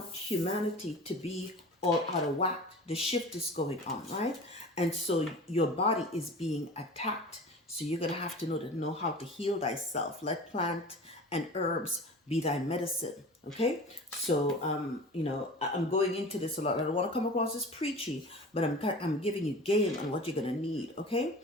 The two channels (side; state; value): both; normal; correlation 0.37